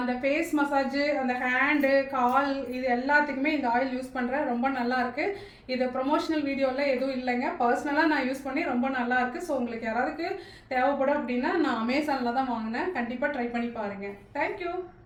ஃபேஸ் மசாஜு, அந்த ஹேண்டு, கால், இது எல்லாத்துக்குமே இந்த ஆயில் யூஸ் பண்ணுறேன். ரொம்ப நல்லா இருக்குது. இது ப்ரொமோஷனல் வீடியோவில் எதுவும் இல்லைங்க, பர்சனலாக நான் யூஸ் பண்ணி ரொம்ப நல்லா இருக்குது. ஸோ உங்களுக்கு யாராவதுக்கு தேவைப்படும் அப்படின்னா நான் அமேசானில் தான் வாங்கினேன். கண்டிப்பாக ட்ரை பண்ணி பாருங்கள். தேங்க்யூ.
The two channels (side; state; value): both; identical; correlation 1.00